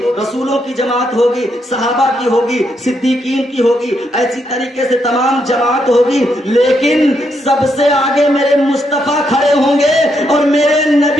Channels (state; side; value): normal; both; correlation 0.78